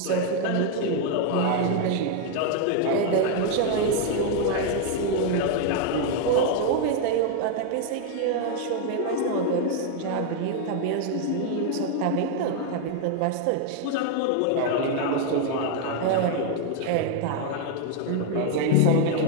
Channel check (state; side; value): different; both; correlation 0.00